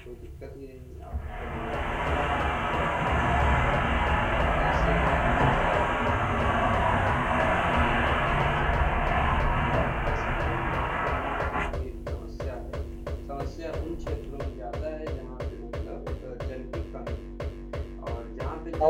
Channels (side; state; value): both; identical; correlation 1.00